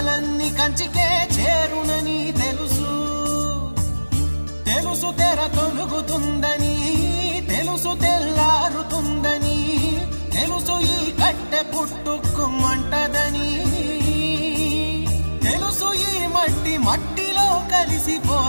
కంచికే చేరునని తెలుసు. తెలుసు తెర తొలుగుతుందని, తెలుసు తెల్లారుతుందని, తెలుసు ఈ కట్టె పుట్టుకుమంటదని, తెలుసు ఈ మట్టి మట్టిలో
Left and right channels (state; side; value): inverted; both; correlation -1.00